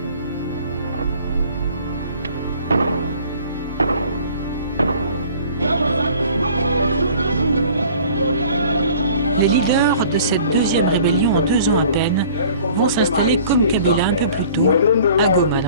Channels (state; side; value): inverted; both; correlation -0.50